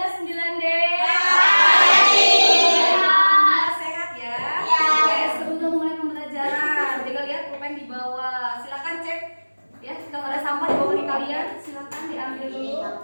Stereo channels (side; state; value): both; inverted; correlation -1.00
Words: 9D? Sehat ya? Oke, sebelum mulai pembelajaran, jaga lihat pulpen di bawah. Silakan cek ya, kalau ada sampah di bawah kalian, silakan diambil dulu.